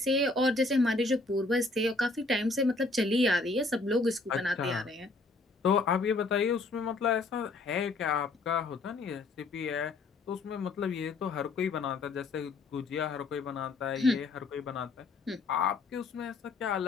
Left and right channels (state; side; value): quieter; right; 3.5 dB